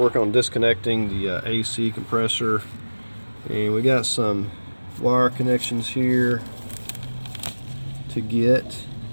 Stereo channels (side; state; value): both; inverted; correlation -1.00